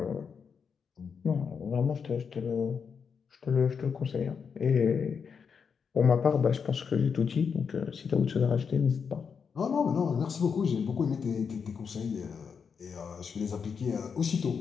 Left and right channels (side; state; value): right; quieter; 6.3 dB